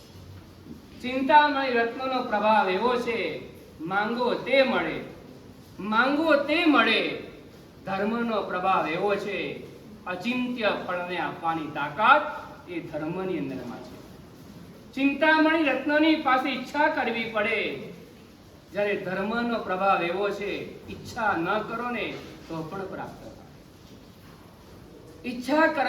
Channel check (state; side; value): identical; both; correlation 1.00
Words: ચિંતામણી રત્નનો પ્રભાવ એવો છે, માંગો તે મળે, માંગો તે મળે. ધર્મનો પ્રભાવ એવો છે, અચિંત્ય ફળને આપવાની તાકાત એ ધર્મની અંદરમાં છે. ચિંતામણી રત્નની પાસે ઈચ્છા કરવી પડે, જ્યારે ધર્મનો પ્રભાવ એવો છે, ઈચ્છા ન કરો ને તો પણ પ્રાપ્ત થાય. ઈચ્છા